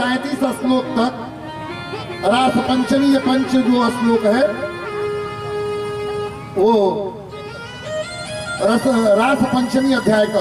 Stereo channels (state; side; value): identical; both; correlation 1.00